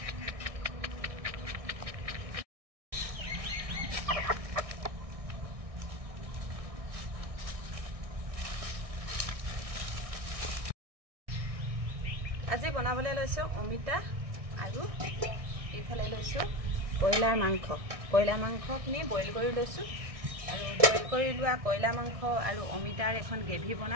আজি বনাবলৈ লৈছো অমিতা আৰু এইফালে লৈছো কয়লাৰ মাংস। কয়লাৰ মাংসখিনি বইল কৰি লৈছো আৰু বইল কৰি লোৱা কয়লা মাংস আৰু অমিতাৰ এখন গ্ৰেভি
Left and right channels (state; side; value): late; left; 1.6 ms